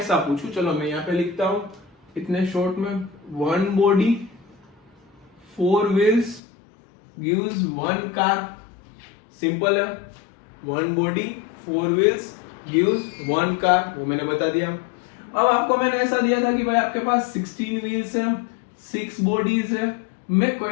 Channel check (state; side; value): drops out; right; at 6.4 s